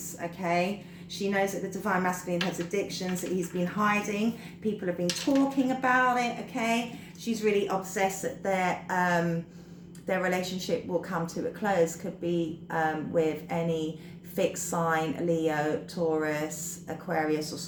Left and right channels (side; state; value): both; identical; correlation 1.00